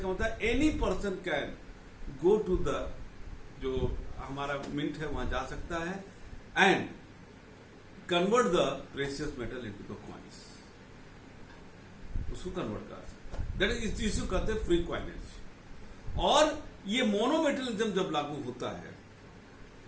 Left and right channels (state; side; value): identical; both; correlation 1.00